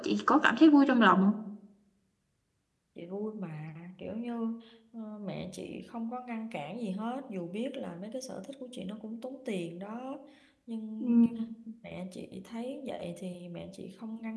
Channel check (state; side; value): identical; both; correlation 1.00